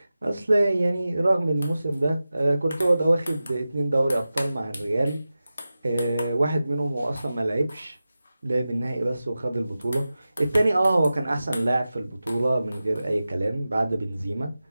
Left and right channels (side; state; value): both; inverted; correlation -0.94